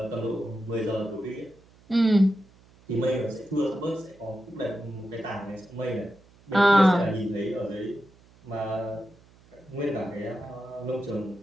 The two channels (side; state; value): right; noise; hum, 27 dB below the sound